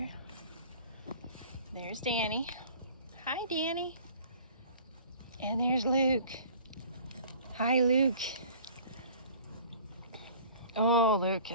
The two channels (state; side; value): inverted; both; correlation -0.48